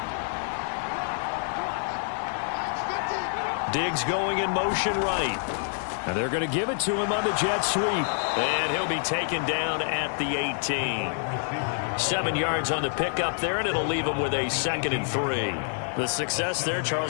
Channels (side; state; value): right; silent; digital silence